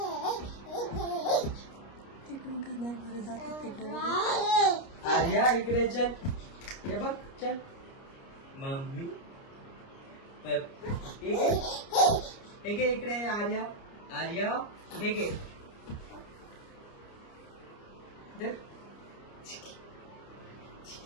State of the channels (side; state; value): right; late; 29 ms